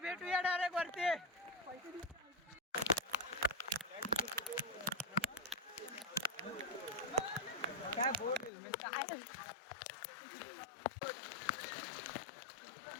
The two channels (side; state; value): right; drops out; at 8.5 s